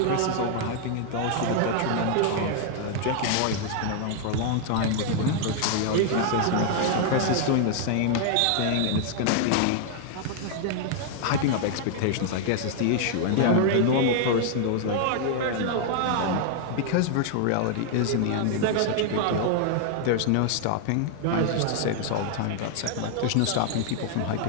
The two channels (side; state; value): both; different; correlation 0.00